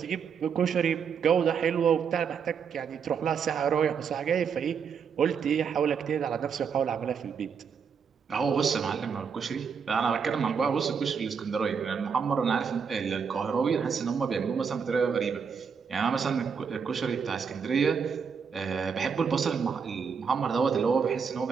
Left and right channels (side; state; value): left; quieter; 6.4 dB